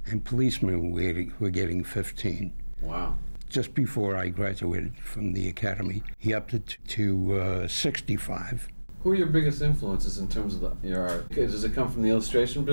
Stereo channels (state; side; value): inverted; both; correlation -1.00